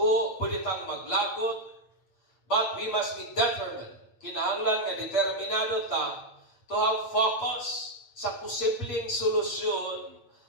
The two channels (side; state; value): right; late; 8.7 ms